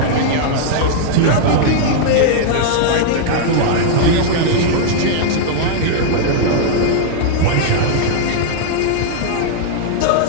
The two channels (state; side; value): different; both; correlation -0.01